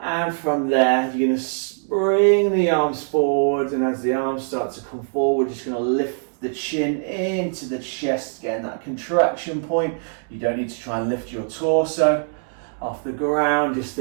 from there, you're going to bring the arms forward. And as the arms start to come forward, you're just going to lift the chin into the chest, getting that contraction point. You don't need to try and lift your torso off the ground. Just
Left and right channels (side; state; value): left; silent; digital silence